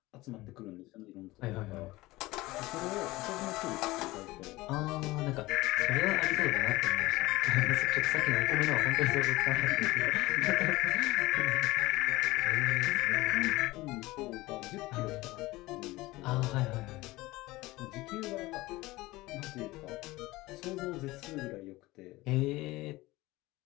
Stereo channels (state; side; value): quieter; right; 19.6 dB